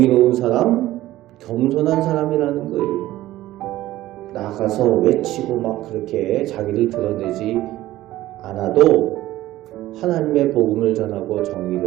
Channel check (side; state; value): left; quieter; 15.5 dB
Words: 사람, 겸손한 사람이라는 거예요. 나가서 외치고 막 그렇게 자기를 드러내지 않아도 하나님의 복음을 전하고